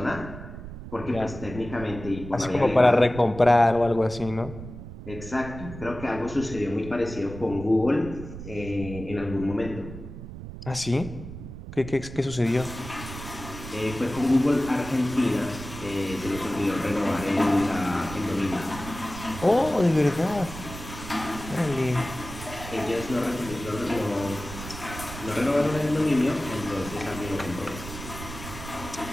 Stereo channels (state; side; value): noise; right; rumble, 11 dB below the sound